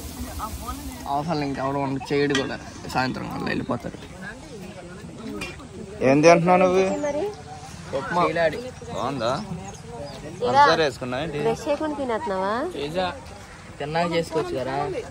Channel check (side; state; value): both; identical; correlation 1.00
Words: అవసరం ఇంకెవరు చేయడు కూడా, సాయంత్రం వాళ్ళు వెళ్ళిపోతారు. ఏం తింటున్నావు నువ్వు? బాగుందా? పంచదార వేసుకున్నా ఏంటి? తిన్నాక చేసుకోవచ్చు కదా.